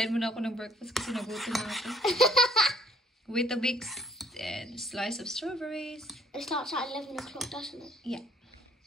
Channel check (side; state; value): both; normal; correlation 0.62